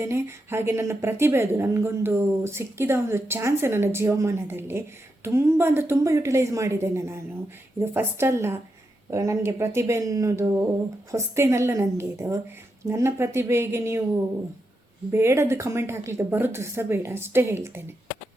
ಹಾಗೆ ನನ್ನ ಪ್ರತಿಭೆ ಅದು ನನಗೊಂದು ಸಿಕ್ಕಿದ ಒಂದು ಚಾನ್ಸ್ ನನ್ನ ಜೀವಮಾನದಲ್ಲಿ. ತುಂಬ ಅಂದರೆ ತುಂಬ ಯುಟಿಲೈಸ್ ಮಾಡಿದ್ದೇನೆ ನಾನು. ಇದು ಫಸ್ಟ್ ಅಲ್ಲ, ನನಗೆ ಪ್ರತಿಭೆ ಅನ್ನೋದು ಹೊಸ್ತೇನಲ್ಲ ನನಗೆ. ಇದು ನನ್ನ ಪ್ರತಿಭೆಗೆ ನೀವು ಬೇಡದ್ದು ಕಮೆಂಟ್ ಹಾಕಲಿಕ್ಕೆ ಬರೋದು ಸಹ ಬೇಡ, ಅಷ್ಟೇ ಹೇಳ್ತೇನೆ.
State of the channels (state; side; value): normal; both; correlation 0.85